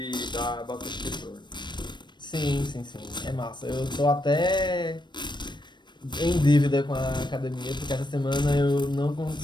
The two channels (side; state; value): right; late; 0.22 ms